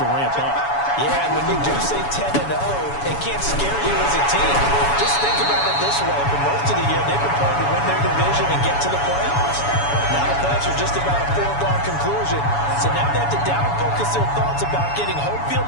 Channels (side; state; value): right; late; 7.1 ms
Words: to ramp up. Yeah, and when you do say 10-0, it can't scare you as a team. Just think about it this way. For most of the year, they've been playing to win their division and get to the playoffs. Now the playoffs are just about a foregone conclusion. So now they have to down-focus their thoughts about getting home